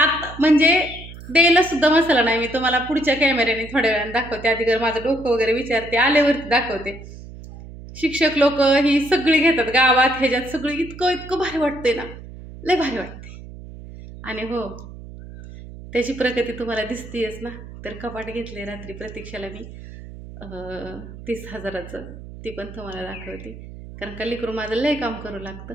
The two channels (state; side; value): noise; right; hum, 14 dB below the sound